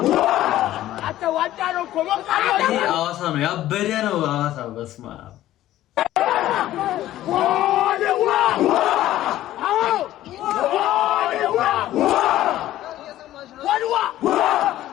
ሐዋሳ ነው ያበደ ነው። ሐዋሳ በስመ አብ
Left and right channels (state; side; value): quieter; right; 14.0 dB